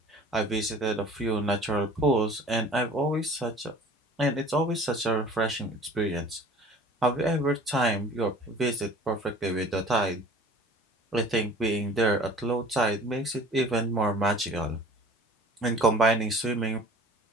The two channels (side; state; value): both; normal; correlation 0.46